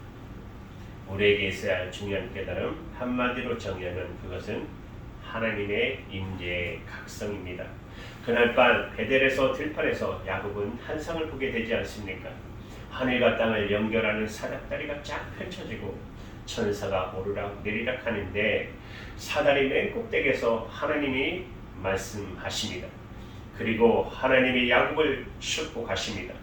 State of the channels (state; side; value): identical; both; correlation 1.00